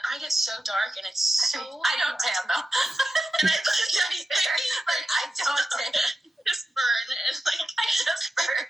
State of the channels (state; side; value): normal; both; correlation 0.91